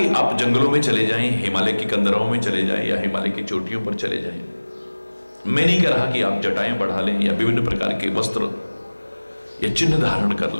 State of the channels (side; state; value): both; inverted; correlation -1.00